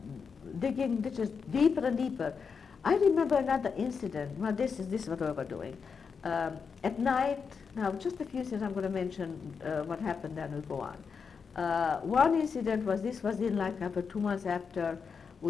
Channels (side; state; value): right; quieter; 5.8 dB